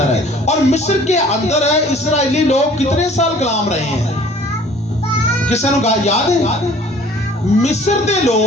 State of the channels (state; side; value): normal; both; correlation 0.52